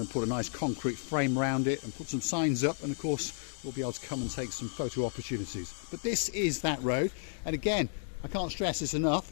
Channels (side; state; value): right; silent; digital silence